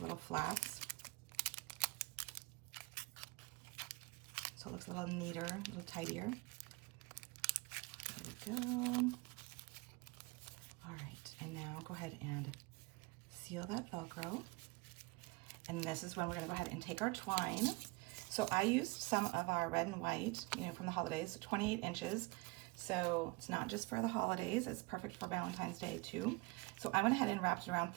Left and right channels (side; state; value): left; quieter; 25.1 dB